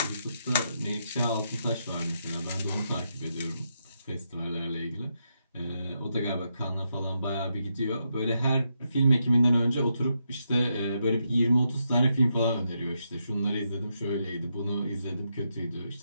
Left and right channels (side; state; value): both; inverted; correlation -0.82